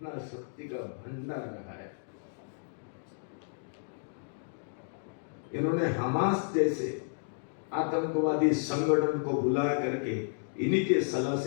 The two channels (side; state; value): right; silent; digital silence